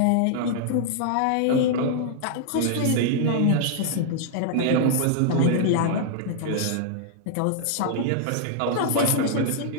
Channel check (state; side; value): different; both; correlation -0.01